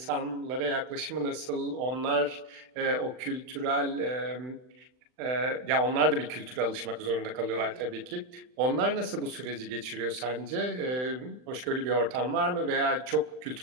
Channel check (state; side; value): late; left; 39 ms